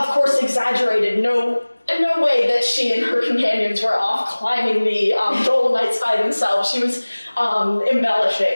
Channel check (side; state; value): both; inverted; correlation -1.00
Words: course, exaggerated. No way that she and her companions were off climbing the Dolomites by themselves. She was